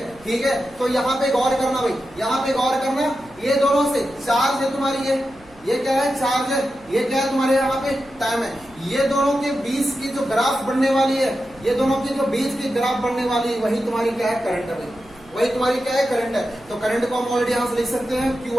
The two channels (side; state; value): right; noise; hum, 27 dB below the sound